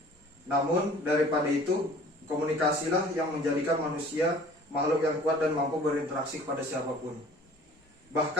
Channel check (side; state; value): both; normal; correlation 0.49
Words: Namun daripada itu, komunikasilah yang menjadikan manusia makhluk yang kuat dan mampu berinteraksi kepada siapapun.